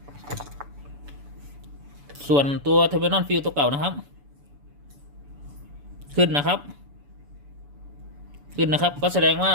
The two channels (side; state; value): left; late; 7.0 ms